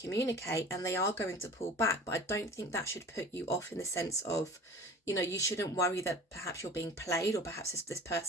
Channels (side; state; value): both; normal; correlation 0.41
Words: and they are going to pull back. But I don't think that should put you off, in the sense of, you shouldn't worry that perhaps you're being played, or perhaps this